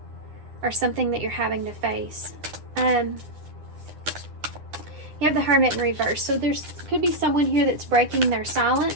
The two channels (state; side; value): late; left; 9.9 ms